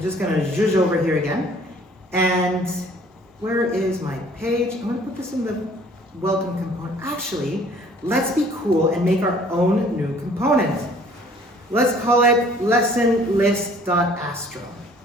just going to zhuzh over here again. And where is my page? I'm going to put this in the welcome component. Actually, let's be cool and make our own new component. Let's call it lessonlist.astro.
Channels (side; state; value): both; normal; correlation 0.55